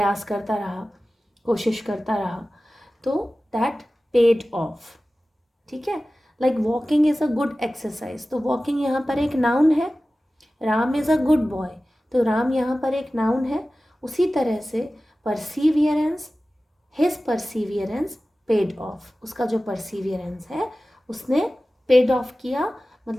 करता रहा, कोशिश करता रहा, तो दैट पेड ऑफ. ठीक है. Like walking is a good exercise, तो वॉकिंग यहाँ पर एक नाउन है. Ram is a good boy, तो राम यहाँ पर एक नाउन है. उसी तरह से परसीवियरेंस, हिज परसीवियरेंस पेड ऑफ. उसका जो परसीवियरेंस है उसने पेड ऑफ किया,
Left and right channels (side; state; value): both; normal; correlation 0.96